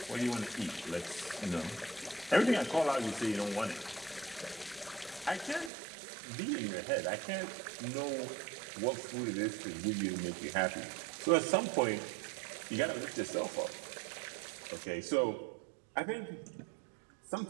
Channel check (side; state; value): left; drops out; at 5.7 s